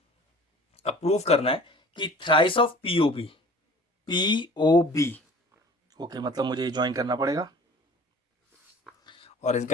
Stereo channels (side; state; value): both; normal; correlation 0.46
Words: अब प्रूफ करना है कि thrice of P O B, P O B, okay मतलब मुझे ज्वाइन करना पड़ेगा और